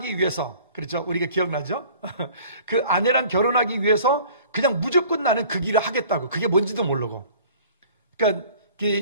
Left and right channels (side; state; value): both; inverted; correlation -0.49